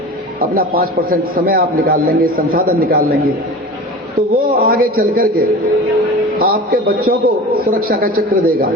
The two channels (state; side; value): normal; both; correlation 0.34